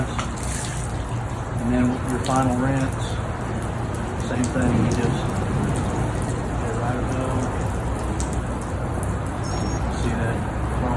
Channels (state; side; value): identical; both; correlation 1.00